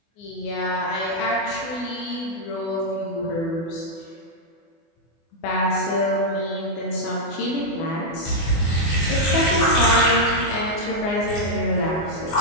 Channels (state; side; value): late; right; 24 ms